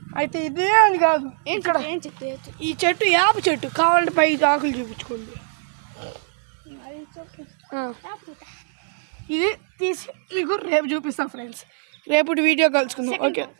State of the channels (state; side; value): silent; left; digital silence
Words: అయితే ఇదే అని కాదు, ఇక్కడ ఈ చెట్టు యాప చెట్టు కావాలంటే పై ఆకులు చూపించుకోండి. ఇది తీసి మీకు రేపు చూపిస్తాం ఫ్రెండ్స్. రేపు వీడియో కలుసుకుందాం. ఓకే.